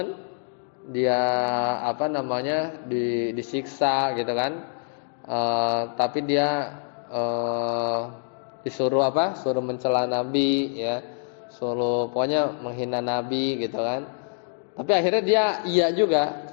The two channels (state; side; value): silent; right; digital silence